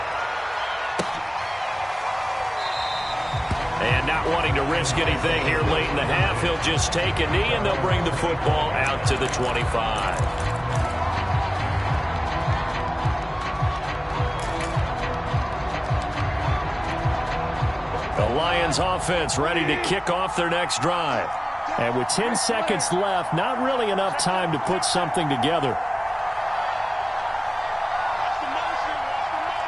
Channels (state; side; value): identical; both; correlation 1.00